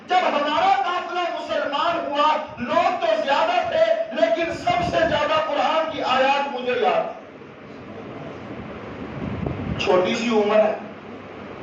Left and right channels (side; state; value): both; identical; correlation 1.00